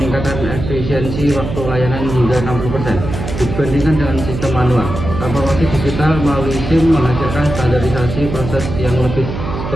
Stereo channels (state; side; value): noise; right; hum, 6 dB below the sound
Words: efisiensi waktu layanan hingga 60% dibandingkan dengan sistem manual. Transformasi digital melalui SIM menghasilkan standarisasi proses yang lebih